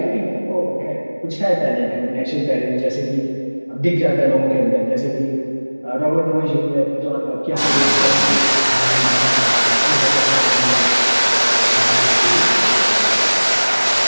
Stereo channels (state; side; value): inverted; both; correlation -1.00